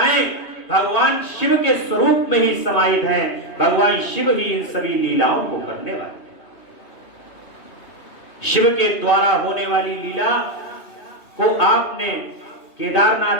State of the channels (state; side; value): late; right; 2.8 ms